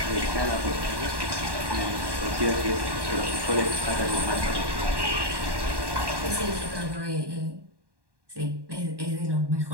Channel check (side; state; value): left; late; 1.1 ms